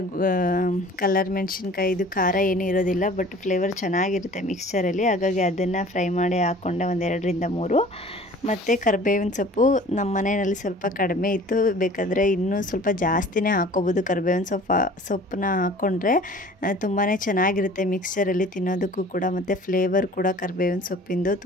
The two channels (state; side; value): normal; both; correlation 0.47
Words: ಕಲರ್ ಮೆಣಸಿನ್ಕಾಯಿ, ಇದು ಖಾರ ಏನೂ ಇರೋದಿಲ್ಲ ಬಟ್ ಫ್ಲೇವರ್ ಚೆನ್ನಾಗಿರುತ್ತೆ ಮಿಕ್ಸ್ಚರಲ್ಲಿ. ಹಾಗಾಗಿ ಅದನ್ನು ಫ್ರೈ ಮಾಡಿ ಹಾಕ್ಕೊಂಡೆ 1-2-3. ಮತ್ತು ಕರಿಬೇವಿನ ಸೊಪ್ಪು ನಮ್ಮ ಮನೆಯಲ್ಲಿ ಸ್ವಲ್ಪ ಕಡಿಮೆ ಇತ್ತು, ಬೇಕಾದರೆ ಇನ್ನೂ ಸ್ವಲ್ಪ ಜಾಸ್ತಿನೇ ಹಾಕ್ಕೋಬೋದು. ಕರಿಬೇವಿನ ಸೊಪ್ಪನ್ನ ಹಾಕ್ಕೊಂಡ್ರೆ ತುಂಬಾ ಚೆನ್ನಾಗಿರುತ್ತೆ ಮಿಕ್ಸ್ಚರಲ್ಲಿ ತಿನ್ನೋದಕ್ಕೂ ಕೂಡ, ಮತ್ತು ಫ್ಲೇವರ್ ಕೂಡ ಕರಿಬೇವಿನ ಸೊಪ್ಪಿಂದು